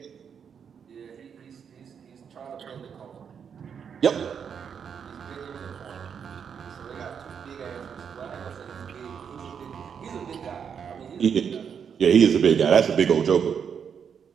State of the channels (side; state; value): left; quieter; 7.2 dB